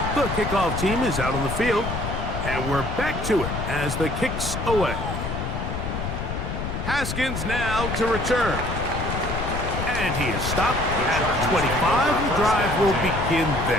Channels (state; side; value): noise; left; rumble, 4 dB below the sound